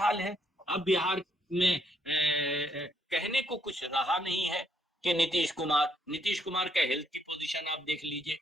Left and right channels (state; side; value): normal; both; correlation 0.72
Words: है। अब बिहार में कहने को कुछ रहा नहीं है कि नीतीश कुमार का हेल्थ की पोजीशन आप देख लीजिए